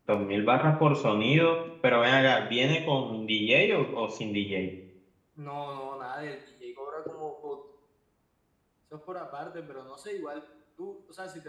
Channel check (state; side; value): identical; both; correlation 1.00